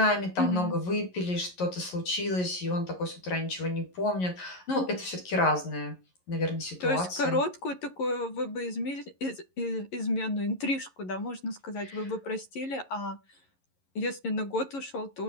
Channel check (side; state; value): right; late; 11 ms